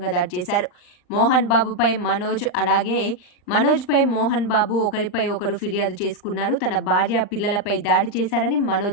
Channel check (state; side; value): late; right; 39 ms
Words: దాడి చేశారు. మోహన్ బాబుపై మనోజ్, అలాగే మనోజ్పై మోహన్ బాబు ఒకరిపై ఒకరు ఫిర్యాదు చేసుకున్నారు. తన భార్య, పిల్లలపై దాడి చేశారని